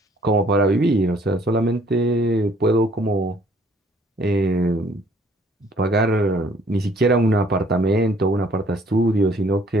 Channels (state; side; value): normal; both; correlation 0.60